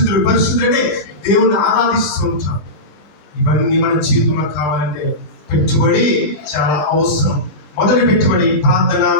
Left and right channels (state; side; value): late; right; 21 ms